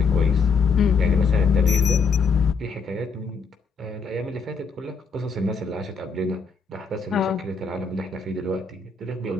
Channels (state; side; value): quieter; right; 4.9 dB